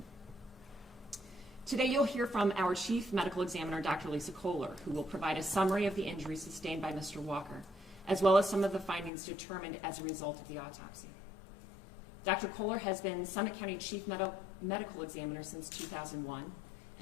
Today you'll hear from our Chief Medical Examiner, Dr. Lisa Kohler, who will provide a summary of the injuries sustained by Mr. Walker, as well as some of the findings determined as a result of the autopsy. Dr. Kohler has been Summit County Chief Medical Examiner since 2001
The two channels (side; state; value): right; drops out; at 9.1 s